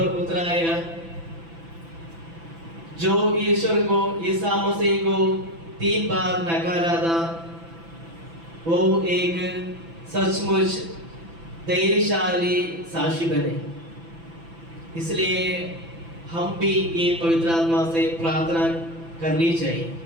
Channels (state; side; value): late; left; 6.0 ms